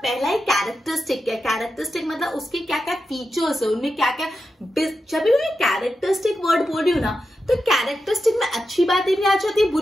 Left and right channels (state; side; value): normal; both; correlation 0.89